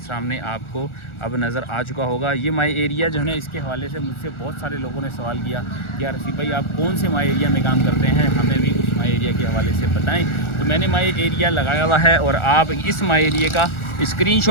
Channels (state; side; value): late; right; 1.4 ms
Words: आपको अब नज़र आ चुका होगा। ये माई एरिया जो है ना, इसके हवाले से मुझसे बहुत सारे लोगों ने सवाल किया कि यार रसीफ़ भाई आप कौन से माई एरिया में काम करते हैं, हमें भी उस माई एरिया के हवाले से बताएं। तो मैंने माई एरिया लगाया हुआ है और आप इस माई एरिया का